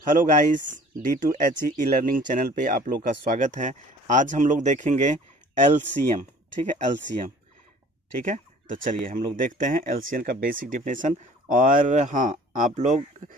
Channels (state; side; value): normal; both; correlation 0.50